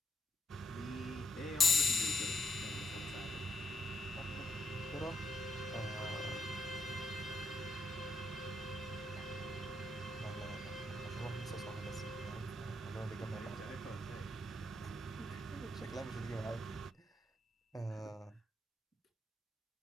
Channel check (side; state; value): both; normal; correlation 0.81